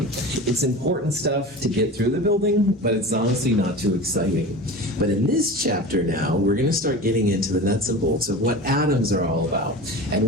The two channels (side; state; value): both; normal; correlation 0.32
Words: It's important stuff to get through the building, but it's honestly not too exciting. But in this chapter now, we're going to start getting into the nuts and bolts of what atoms are all about,